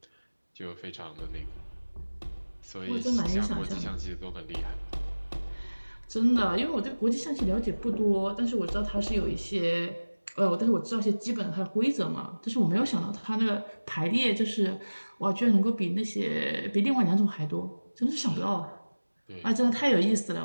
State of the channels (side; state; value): both; inverted; correlation -1.00